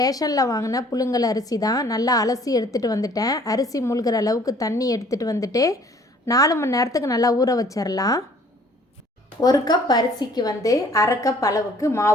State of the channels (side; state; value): both; normal; correlation 0.56